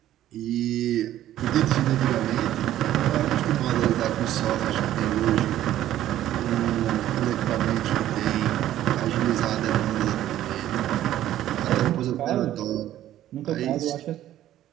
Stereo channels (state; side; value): quieter; left; 12.8 dB